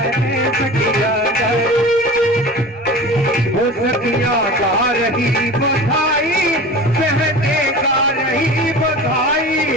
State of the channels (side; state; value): both; normal; correlation 0.35